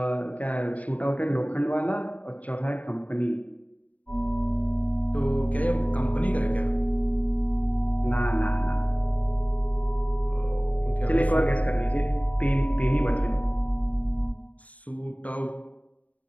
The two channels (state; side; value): late; right; 0.070 ms